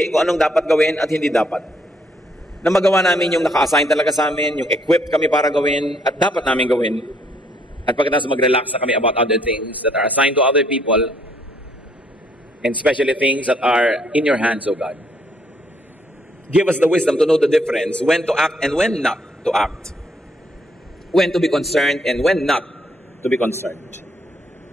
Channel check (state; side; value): normal; both; correlation 0.69